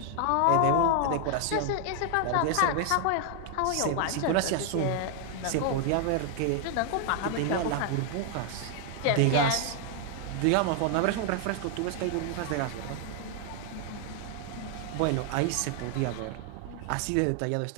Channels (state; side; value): different; both; correlation 0.00